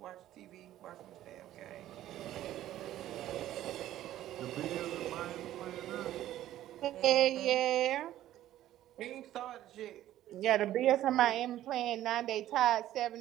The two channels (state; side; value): quieter; left; 13.3 dB